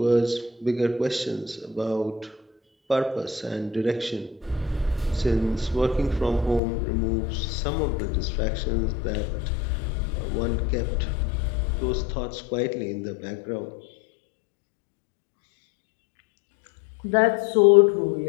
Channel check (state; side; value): drops out; right; at 6.6 s